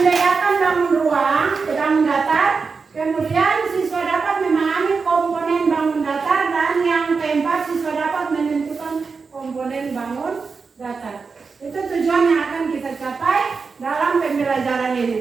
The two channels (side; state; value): left; quieter; 4.9 dB